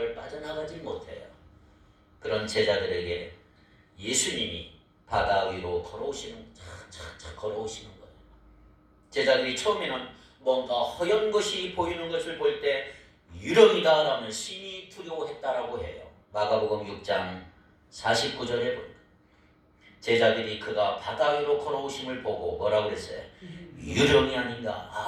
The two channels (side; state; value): both; identical; correlation 1.00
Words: 빠져나가지 못해요. 그런 제자들에게 예수님이 바다 위로 걸어오시는 착착착 걸어오시는 거예요. 제자들이 처음에는 뭔가 허연 것이 보이는 것을 볼 때 유령이다라는 심히 두려워했다라고 해요. 마가복음 6장 49절에 보니까 제자들이 그가 바다 위로 걸어오심을 보고 뭐라고 그랬어요? 유령이 아닌가?